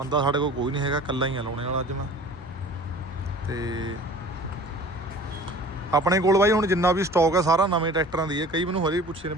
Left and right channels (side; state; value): both; normal; correlation 0.44